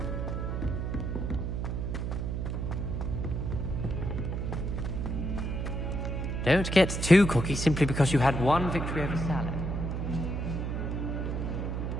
Don't get too cocky simply because you had one victory over salad.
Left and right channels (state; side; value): noise; right; hum, 2 dB below the sound